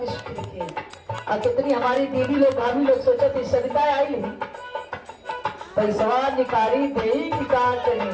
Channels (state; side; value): identical; both; correlation 1.00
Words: सुखी रखी, और कितनी हमारी दीदी लोग भाभी लोग सोचा थी सविता आई नहीं पैसा निकारी दे की कहा करी,